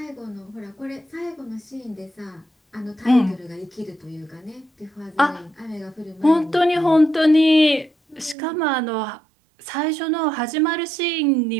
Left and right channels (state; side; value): drops out; left; at 8.3 s